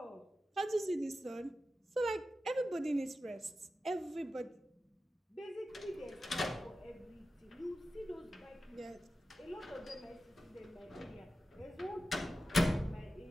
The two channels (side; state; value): both; normal; correlation 0.93